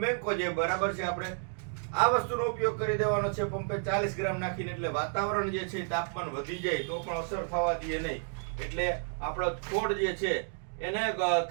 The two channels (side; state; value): left; silent; 57 dB below the other